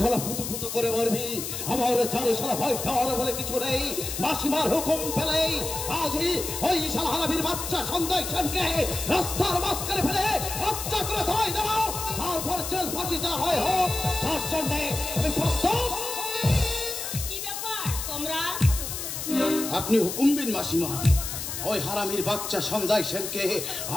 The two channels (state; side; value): noise; left; hiss, 5 dB below the sound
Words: শালা ফুতু ফুতু করে মরবি, আমার চারে শালা ভয় পাওয়ার বলে কিছু নেই। মাসিমার হুকুম পেলেই আজই ওই শালা হারামির বাচ্চা সঞ্জয় সেনকে রাস্তার মাঝখানে ফেলে হত্যা করে ধরাই দেবো। তারপর জেল ফাঁসি যা হয় হোক, তার জন্যে আমি প্রস্তুত। কি ব্যাপার তোমরা? আপনি হুকুম দিন মাসিমা। ওই হারামির বাচ্চা সঞ্জয় সেনকে